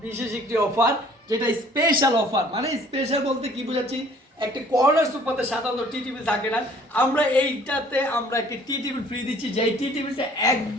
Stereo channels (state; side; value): normal; both; correlation 0.55